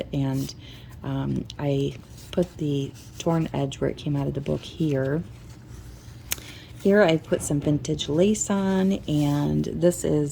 and I put the torn edge where it came out of the book here. Here I put some vintage lace on, and this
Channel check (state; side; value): identical; both; correlation 1.00